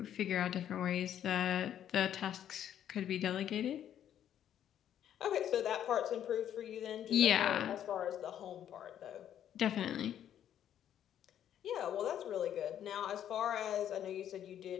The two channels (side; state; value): right; quieter; 10.3 dB